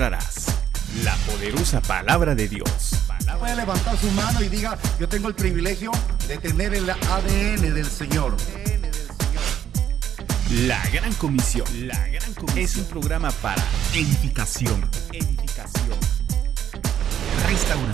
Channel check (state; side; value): quieter; left; 9.9 dB